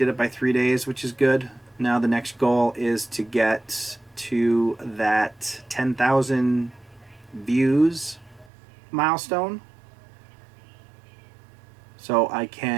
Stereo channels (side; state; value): left; drops out; at 8.5 s